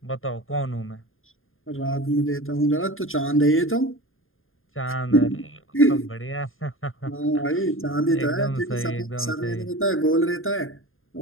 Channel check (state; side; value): late; right; 0.60 ms